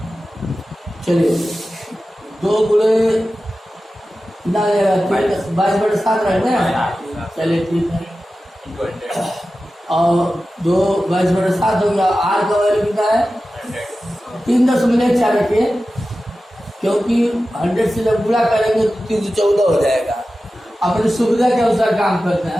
चलिए, 2 गुणे कितना रहेगा? 22/7 रहेगा। चलिए ठीक है, और 2 22/7 हो गया। आर का वैल्यू कितना है? 3.4 रखिए, क्योंकि 100 से जब गुणा करेंगे तो 314 हो जाएगा। अपनी सुविधा के अनुसार काम करते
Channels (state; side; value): normal; both; correlation 0.94